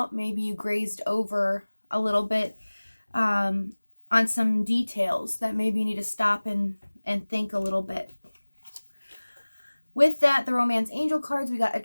Maybe you grazed over a little bit on some details that maybe you need to stop and think a little bit. With that, the romance angel cards, we got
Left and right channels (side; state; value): both; inverted; correlation -1.00